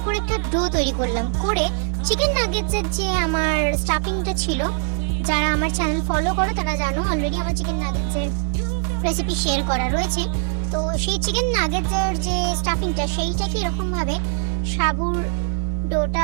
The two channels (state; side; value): silent; left; digital silence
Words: করে একটা ডো তৈরি করলাম। করে চিকেন নাগেটসের যে আমার স্টাফিংটা ছিল, যারা আমার চ্যানেল ফলো করো তারা জানো অলরেডি আমার চিকেন নাগেটসের রেসিপি শেয়ার করা রয়েছে। তো সেই চিকেন নাগেটসের যে স্টাফিংটা সেইটাকে এরকম ভাবে সাবুর